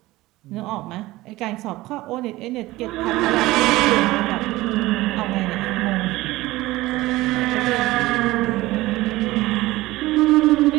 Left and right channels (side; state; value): left; quieter; 18.5 dB